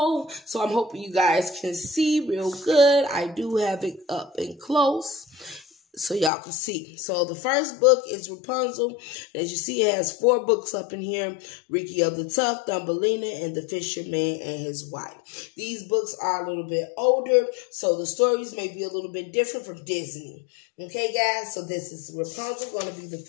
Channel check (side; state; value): right; drops out; at 6.3 s